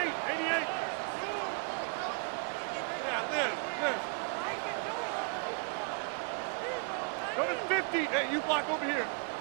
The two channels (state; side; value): quieter; left; 38.6 dB